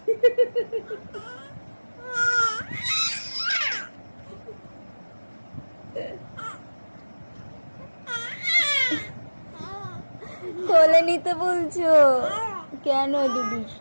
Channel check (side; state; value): both; inverted; correlation -1.00